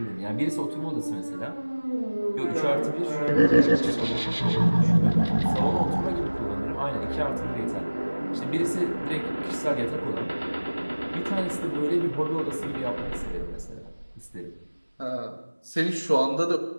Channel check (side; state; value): both; inverted; correlation -1.00